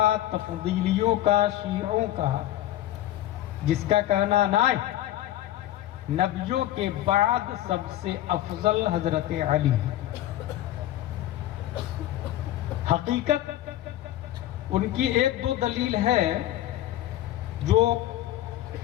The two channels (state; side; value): quieter; right; 13.9 dB